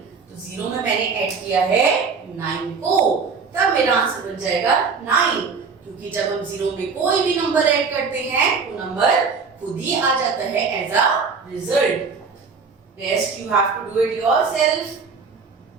तो 0 में मैंने ऐड किया है 9 को, तब मेरा आंसर बन जाएगा 9। क्योंकि जब हम 0 में कोई भी नंबर ऐड करते हैं वो नंबर खुद ही आ जाता है as a result. Rest you have to do it yourself.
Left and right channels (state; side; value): quieter; left; 5.2 dB